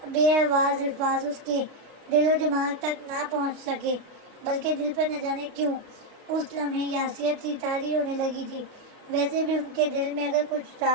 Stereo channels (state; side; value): late; left; 32 ms